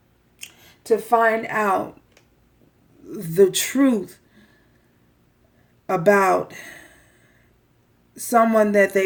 the truth about someone that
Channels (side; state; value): both; identical; correlation 1.00